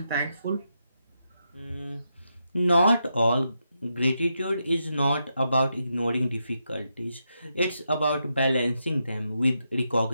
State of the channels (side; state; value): both; inverted; correlation -0.84